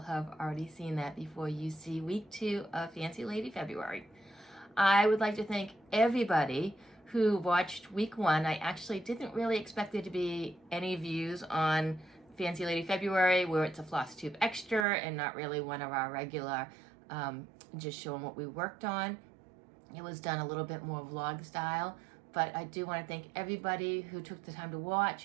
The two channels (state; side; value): drops out; left; at 14.9 s